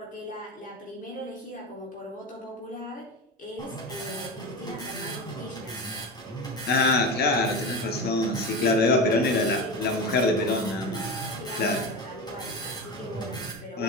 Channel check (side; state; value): both; normal; correlation 0.25